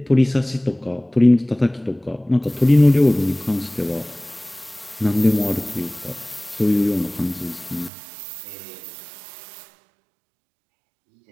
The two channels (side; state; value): left; drops out; at 7.9 s